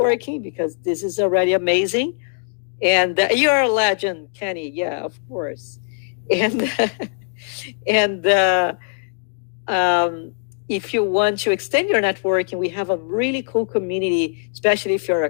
because this is already amazing. And you're a legend, Kenny. Yeah, of course. And if you want to extend your networking, we have a really cool community, especially if you're a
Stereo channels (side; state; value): right; silent; digital silence